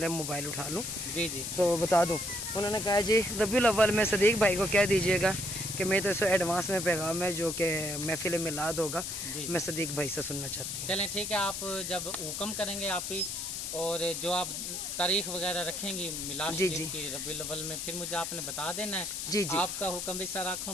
मोबाइल उठा लूँ। जी जी, तो बता दूँ। उन्होंने कहा जी रबीउल अव्वल में सदीक भाई को कह दीजिएगा कि मेरी तरफ से एडवांस में पैगाम है, जो कि महफिल मिलाद होगा, मैं सदीक भाई से सुनना चाहती हूँ। चलें ठीक है, आप जब हुक्म करेंगे आप ही, और जो आप तारीख वगैरह रखेंगी मिलाद शरीफ की रबीउल अव्वल में, फिर मुझे आपने बता देना है। जी जी, आपका हुक्म भी सर आँखों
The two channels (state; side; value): noise; left; hiss, 4 dB below the sound